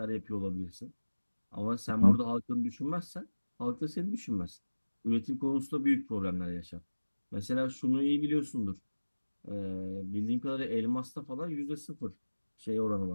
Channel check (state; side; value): inverted; both; correlation -1.00